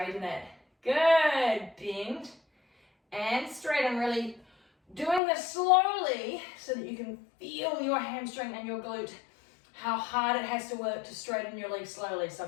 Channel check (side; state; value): right; drops out; at 5.2 s